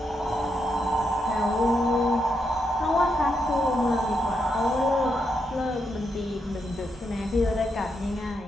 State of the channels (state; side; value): normal; both; correlation 0.82